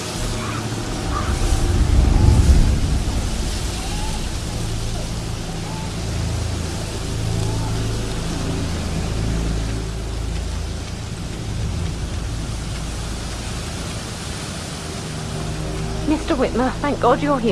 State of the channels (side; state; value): both; identical; correlation 1.00